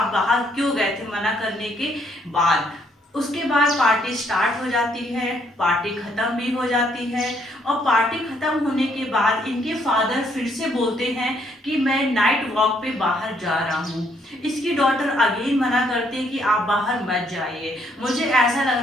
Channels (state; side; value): normal; both; correlation 0.70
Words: बाहर क्यों गए थे मना करने के बाद। उसके बाद पार्टी स्टार्ट हो जाती है, पार्टी खत्म भी हो जाती है, और पार्टी खत्म होने के बाद इनके फादर फिर से बोलते हैं कि मैं नाइट वॉक पे बाहर जा रहा हूँ। इसकी डॉटर अगेन मना करती है कि आप बाहर मत जाइए, मुझे ऐसा लग